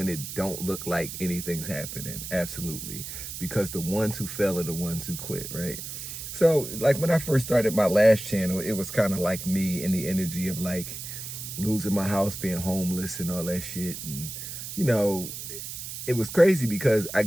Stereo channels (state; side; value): noise; right; hiss, 8 dB below the sound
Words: it don't look like anything's happening. Absolutely, because the ones who fail are the ones who quit, right? So like when I first started my last channel, it was kind of like me in the energy of like losing my house, being homeless and all that shit. And, you know, it was crazy because I